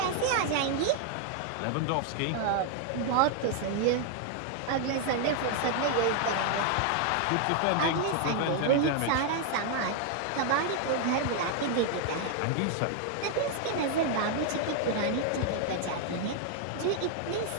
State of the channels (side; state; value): both; different; correlation 0.00